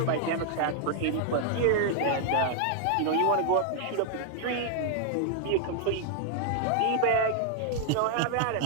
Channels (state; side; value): different; both; correlation 0.00